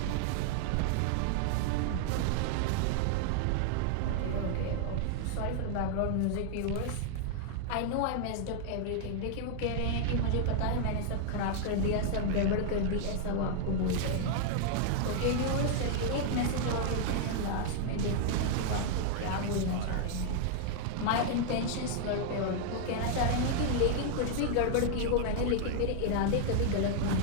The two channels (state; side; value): different; both; correlation 0.00